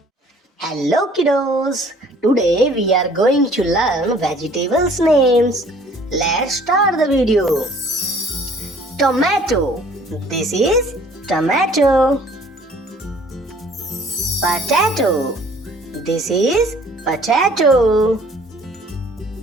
Hello kiddos, today we are going to learn vegetables names. Let's start the video. Tomato, this is tomato. Potato, this is potato.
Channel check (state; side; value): normal; both; correlation 0.55